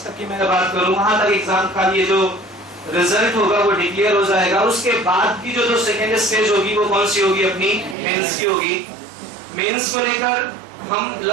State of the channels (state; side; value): drops out; left; at 8.0 s